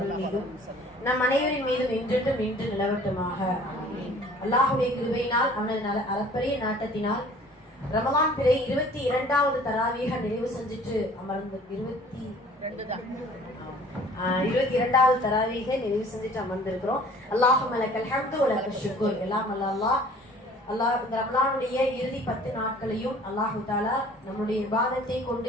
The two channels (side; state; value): both; normal; correlation 0.51